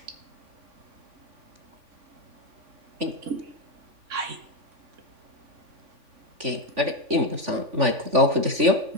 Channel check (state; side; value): late; left; 3.5 ms